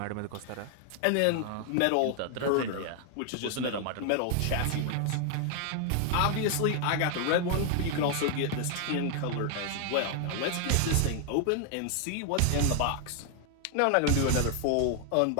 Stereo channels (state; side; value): different; both; correlation 0.00